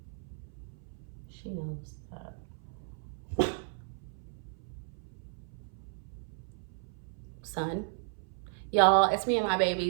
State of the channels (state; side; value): silent; left; 55 dB below the other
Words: she knows that. Son, y'all, it's me and my